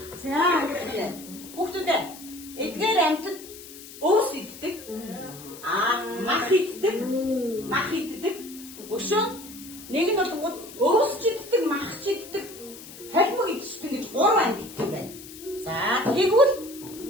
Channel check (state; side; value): noise; left; hiss, 16 dB below the sound